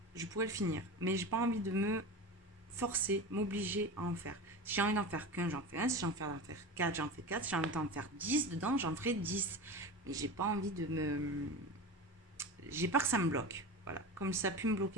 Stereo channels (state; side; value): normal; both; correlation 0.28